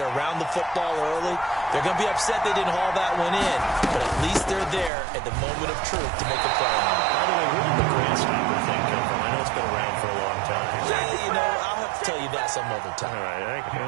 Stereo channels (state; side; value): drops out; left; at 4.9 s